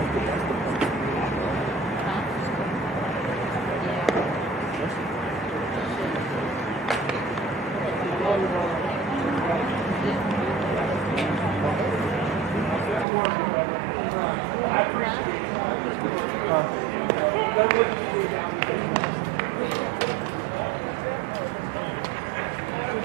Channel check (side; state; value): left; drops out; at 13.1 s